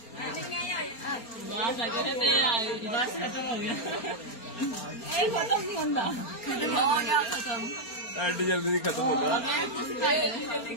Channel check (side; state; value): right; late; 4.3 ms